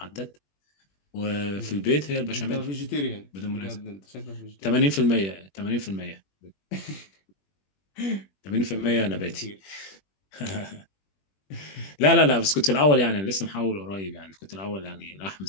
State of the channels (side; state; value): right; late; 21 ms